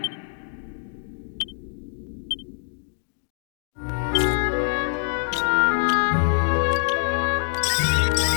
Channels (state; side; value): silent; right; digital silence